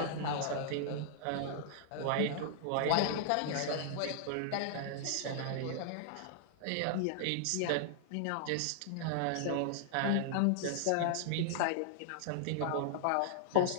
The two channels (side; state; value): both; different; correlation -0.01